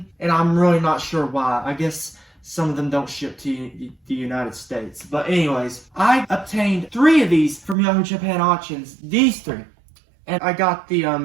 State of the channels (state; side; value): drops out; left; at 7.8 s